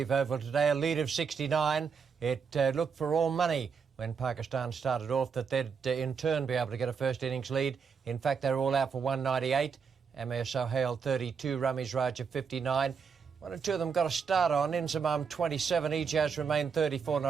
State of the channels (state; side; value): quieter; left; 6.1 dB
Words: Oval today. A lead of 69. It looked for all money when Pakistan started off that they'd in turn be able to get a first innings lead. In fact, they were all out for 198. Amir Sohail 32, Ramiz Raja 59. One or two of them got a start on. Inzamam 27, Ijaz remained 34